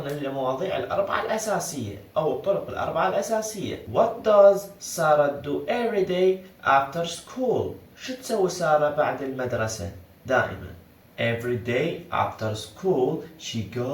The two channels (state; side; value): identical; both; correlation 1.00